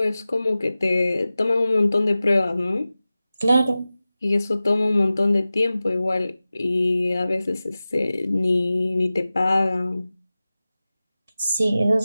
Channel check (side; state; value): both; inverted; correlation -0.96